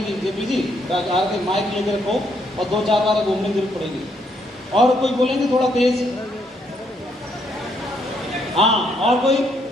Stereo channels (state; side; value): normal; both; correlation 0.73